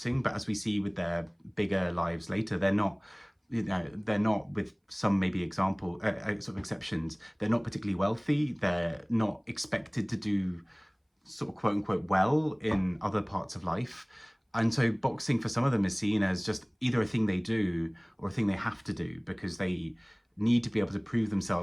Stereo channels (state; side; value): identical; both; correlation 1.00